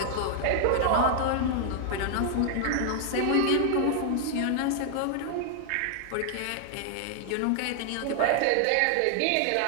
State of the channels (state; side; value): different; both; correlation 0.00